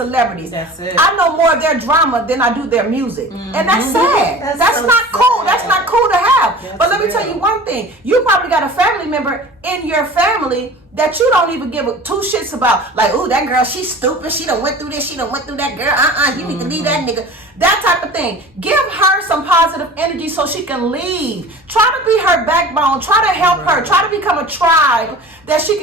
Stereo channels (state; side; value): normal; both; correlation 0.40